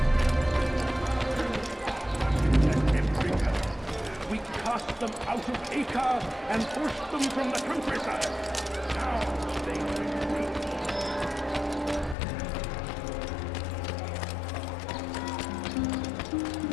We cast them out of Acre and forced them from the countryside. Now they retreat.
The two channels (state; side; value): drops out; right; at 12.2 s